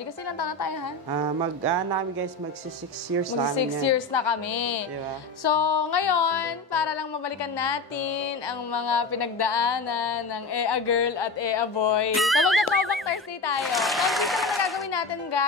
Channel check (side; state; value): right; quieter; 3.5 dB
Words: Kasi ilang taon na tayo, ha? Namin guys, magsi 6 years na. Mag 6 years na kami. Diba? So, ngayon, para lang mabalikan natin ang mga pinagdaanan ng Ea Girl at Ea Boy. So, magta-throwback Thursday tayo. So, dito na gagawin natin,